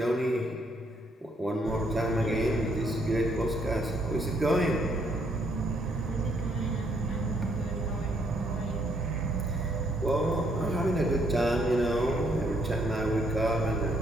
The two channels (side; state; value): both; normal; correlation 0.71